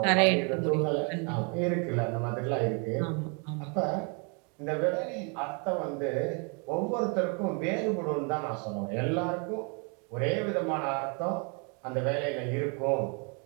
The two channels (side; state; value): left; quieter; 35.5 dB